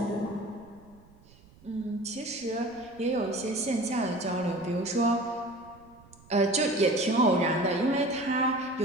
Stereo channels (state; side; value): noise; right; rumble, 26 dB below the sound